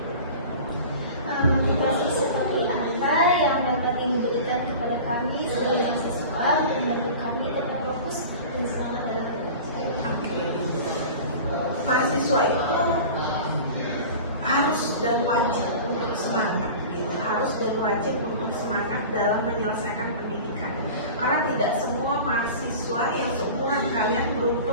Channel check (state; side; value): inverted; both; correlation -0.37